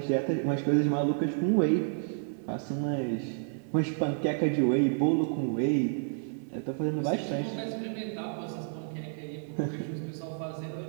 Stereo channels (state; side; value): silent; left; 58 dB below the other